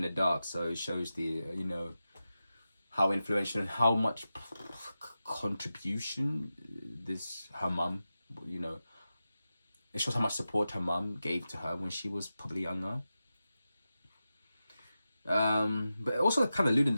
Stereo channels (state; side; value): inverted; both; correlation -0.92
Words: the dark. So it shows the you know, how influential and how much contribution this her mum, you know, it shows how much support her mum gave to her when she was probably younger. But also kind of alluding